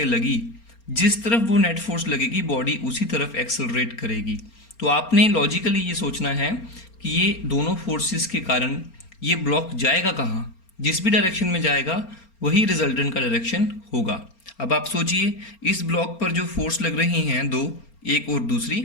लगी, जिस तरफ वो नेट फोर्स लगेगी बॉडी उसी तरफ एक्सेलरेट करेगी। तो आपने लॉजिकली ये सोचना है कि ये दोनों फोर्सेस के कारण ये ब्लॉक जाएगा कहाँ, जिस भी डायरेक्शन में जाएगा वही रिजल्टेंट का डायरेक्शन होगा। अब आप सोचिए इस ब्लॉक पर जो फोर्स लग रही हैं दो, एक और दूसरी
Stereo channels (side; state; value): right; late; 4.3 ms